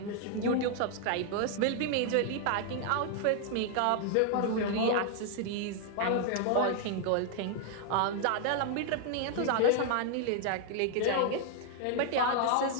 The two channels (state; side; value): different; both; correlation 0.00